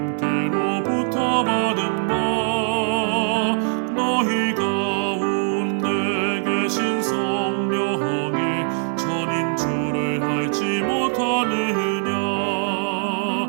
받은 바 너희 가운데 계신 성령의 전인 줄을 알지 못하느냐.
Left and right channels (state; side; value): silent; left; 56 dB below the other